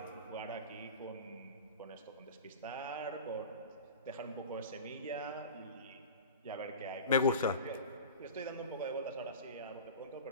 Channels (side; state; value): both; inverted; correlation -0.33